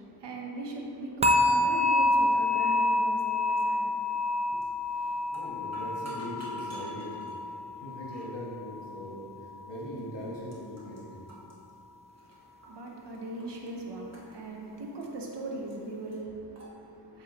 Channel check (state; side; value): normal; both; correlation 0.63